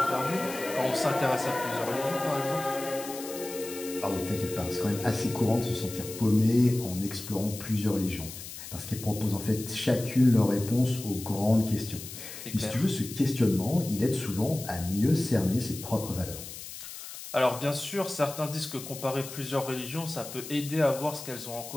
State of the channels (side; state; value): left; noise; hiss, 11 dB below the sound